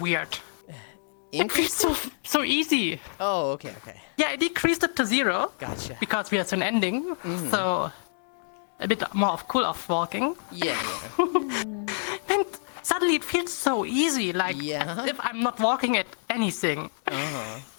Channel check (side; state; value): right; silent; digital silence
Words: Increased So it? so easy. Oh, okay, okay. Yeah, I decreased it to 0 Gotcha. because we are soon ending. So a bit more of cool off walking. Yeah, yeah. And suddenly it feels so easy, like Yeah. as if I'm not walking at anything. Uh-huh.